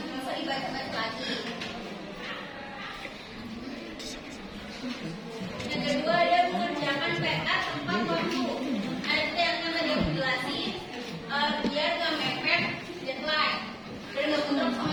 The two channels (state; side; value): identical; both; correlation 1.00